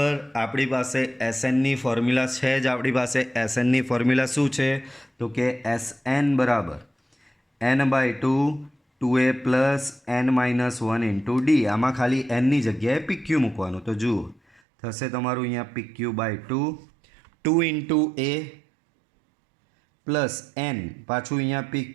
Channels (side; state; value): left; drops out; at 14.6 s